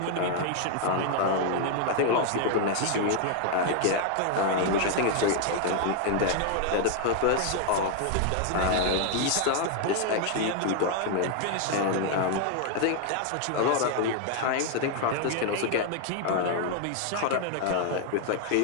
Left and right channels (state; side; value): different; both; correlation 0.00